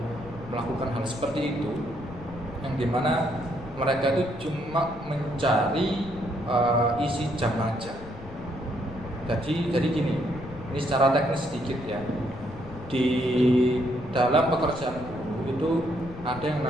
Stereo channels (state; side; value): noise; left; rumble, 15 dB below the sound